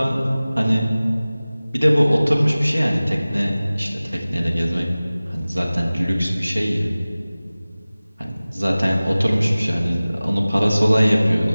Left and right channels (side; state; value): both; inverted; correlation -0.98